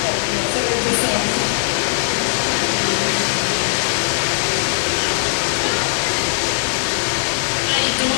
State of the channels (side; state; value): right; silent; digital silence